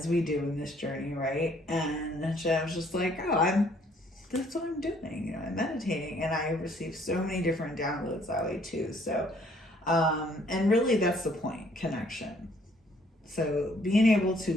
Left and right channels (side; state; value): both; normal; correlation 0.63